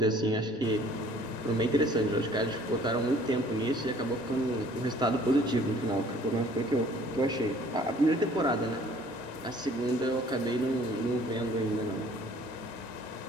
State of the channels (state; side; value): normal; both; correlation 0.55